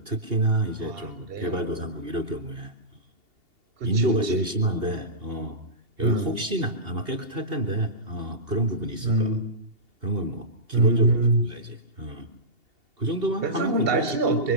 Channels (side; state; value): left; late; 2.8 ms